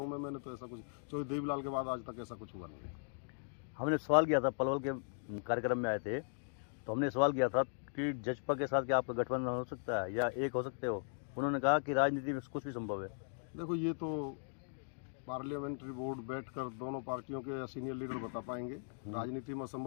मैंने तो ऐसा कुछ, चौधरी देवीलाल के बाद आज तक ऐसा कुछ हुआ नहीं है। हमने सवाल किया था, पलवल के कार्यक्रम में आए थे तो हमने सवाल किया था कि जजपा के साथ क्या आपका गठबंधन हो सकता है या एक हो सकते हो? उन्होंने कहा कि राजनीति में कुछ भी संभव है। देखो ये तो पार्लियामेंट्री बोर्ड बैठकर दोनों पार्टियों के सीनियर लीडर बता पाएंगे। राजनीति में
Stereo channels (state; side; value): silent; right; digital silence